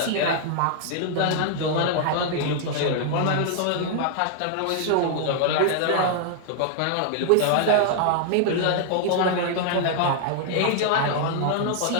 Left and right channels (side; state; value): both; different; correlation -0.01